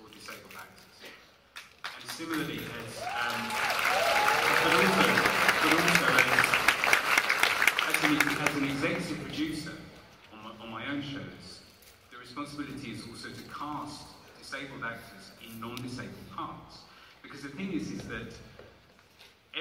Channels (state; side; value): identical; both; correlation 1.00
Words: disabled actors. And similarly, as an executive producer on my own shows, the responsibility is also to cast disabled actors in non-disabled parts. Because the thing is that